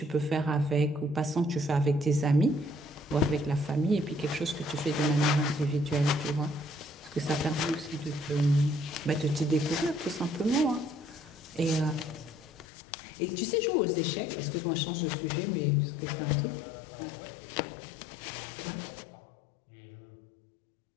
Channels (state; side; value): drops out; right; at 12.7 s